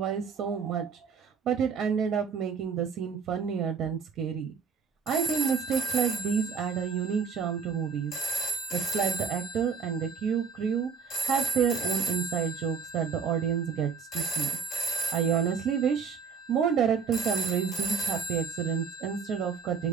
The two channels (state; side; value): quieter; left; 6.1 dB